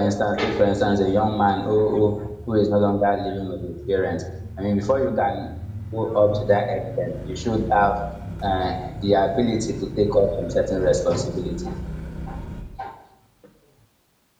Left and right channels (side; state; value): both; identical; correlation 1.00